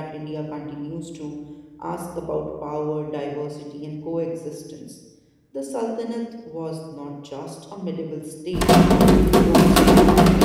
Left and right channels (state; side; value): identical; both; correlation 1.00